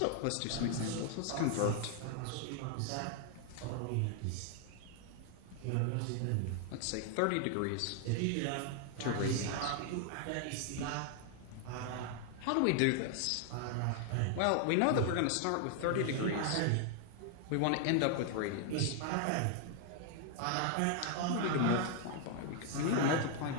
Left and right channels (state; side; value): different; both; correlation 0.00